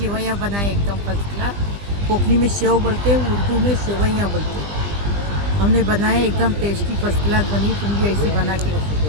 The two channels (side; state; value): left; late; 20 ms